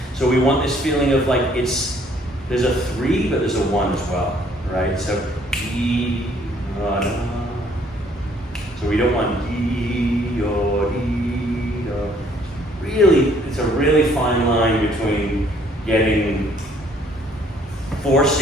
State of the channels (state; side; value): normal; both; correlation 0.62